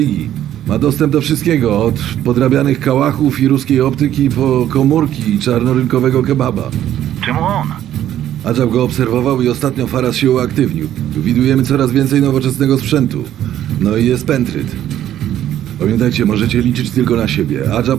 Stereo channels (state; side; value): quieter; left; 11.7 dB